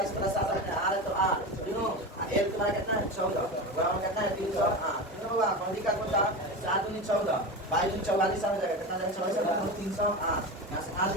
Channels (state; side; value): normal; both; correlation 0.24